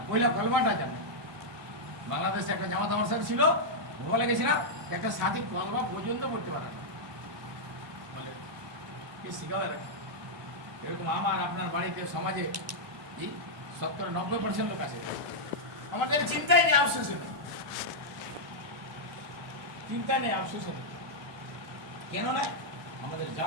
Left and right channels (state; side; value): normal; both; correlation -0.06